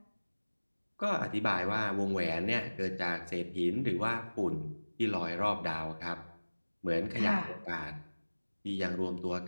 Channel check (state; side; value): inverted; both; correlation -1.00